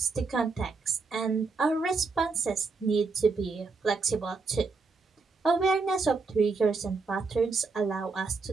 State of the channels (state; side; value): quieter; left; 4.2 dB